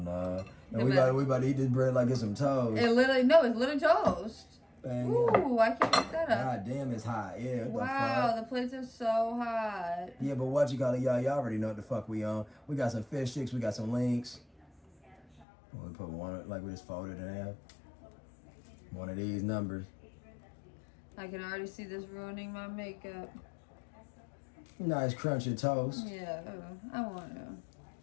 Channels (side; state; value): right; drops out; at 15.5 s